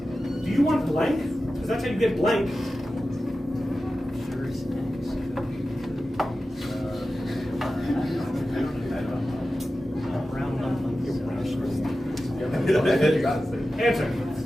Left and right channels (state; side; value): normal; both; correlation 0.94